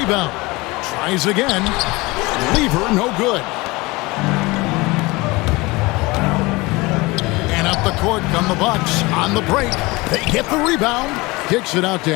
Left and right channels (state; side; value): quieter; right; 23.1 dB